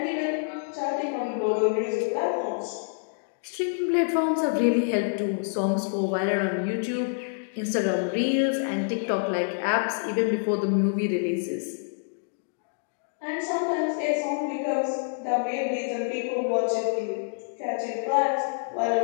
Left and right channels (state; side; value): silent; right; digital silence